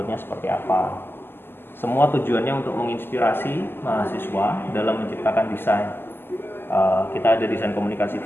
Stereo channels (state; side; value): late; right; 0.10 ms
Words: seperti apa. Semua tujuannya untuk menginspirasi mahasiswa dalam menciptakan desain. Kita ada desain komunikasi